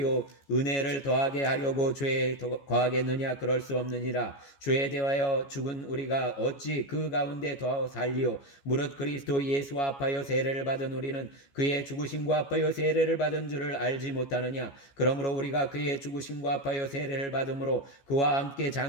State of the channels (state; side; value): late; right; 14 ms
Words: 은혜를 더하게 하려고 죄에 거하겠느냐? 그럴 수 없느니라. 죄에 대하여 죽은 우리가 어찌 그 가운데 더 살리요? 무릇 그리스도 예수와 합하여 세례를 받은 우리는 그의 죽으심과 합하여 세례를 받은 줄을 알지 못하느냐? 그러므로 우리가 그의 죽으심과 합하여 세례를 받음으로 그와 함께